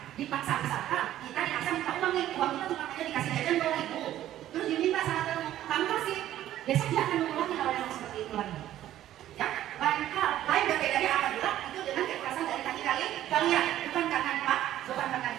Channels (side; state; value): left; quieter; 12.8 dB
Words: dipaksa misalkan, kita dipaksa minta uang nih, uang kita cuma hanya dikasih jajan ke ibu, terus diminta sama teman, kamu kasih, besok dia akan mengulangi hal yang seperti itu lagi. Ya, lain berbedanya apabila itu dengan kekerasan dari kaki kalian, bukan karena bukan karena